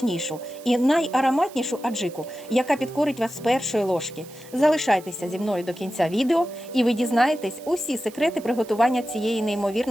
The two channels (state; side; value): noise; right; hiss, 21 dB below the sound